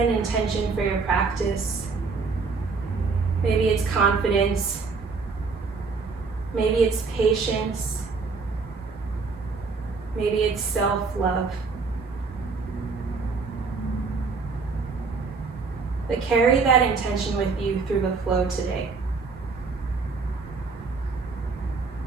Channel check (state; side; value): quieter; left; 4.6 dB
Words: intention for your practice. Maybe it's confidence. Maybe it's patience. Maybe it's self-love. But carry that intention with you through the flow today.